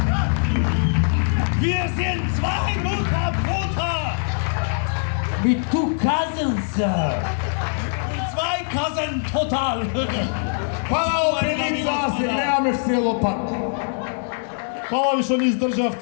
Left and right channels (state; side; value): silent; right; 64 dB below the other